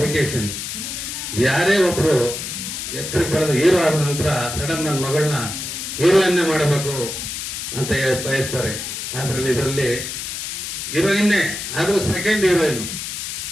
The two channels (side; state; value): left; noise; hiss, 6 dB below the sound